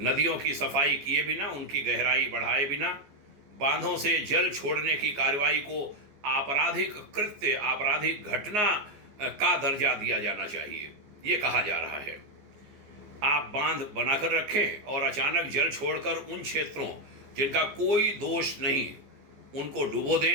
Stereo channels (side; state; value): left; late; 14 ms